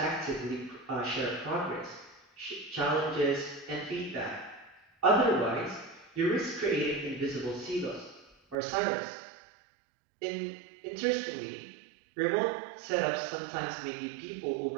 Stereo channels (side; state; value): left; drops out; at 8.6 s